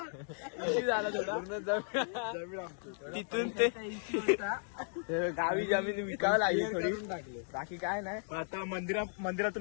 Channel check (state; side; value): silent; right; digital silence